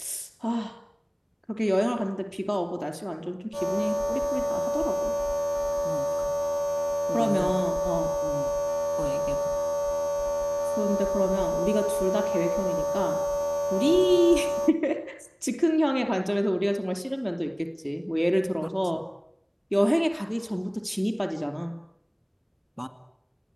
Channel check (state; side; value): identical; both; correlation 1.00